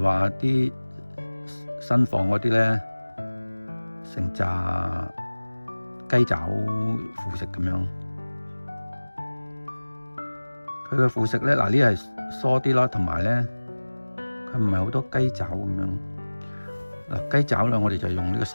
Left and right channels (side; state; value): both; inverted; correlation -1.00